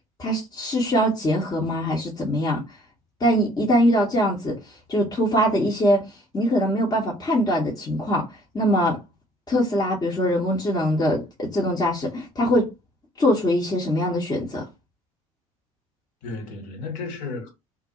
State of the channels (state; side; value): normal; both; correlation 0.59